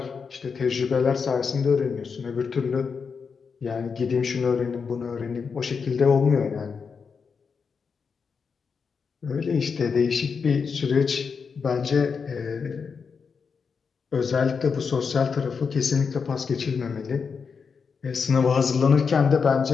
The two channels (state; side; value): quieter; right; 5.7 dB